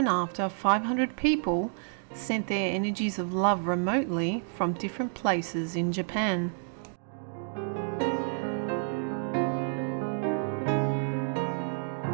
after 500 people sent their energies of love remotely from different places in Japan.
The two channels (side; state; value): left; silent; digital silence